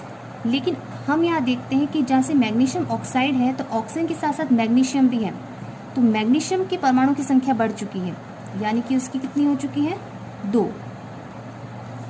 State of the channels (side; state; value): both; identical; correlation 1.00